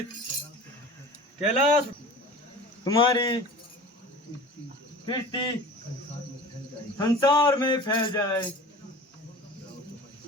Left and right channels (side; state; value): both; normal; correlation 0.38